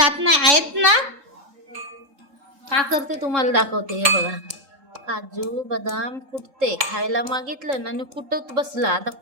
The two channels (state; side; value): late; left; 3.7 ms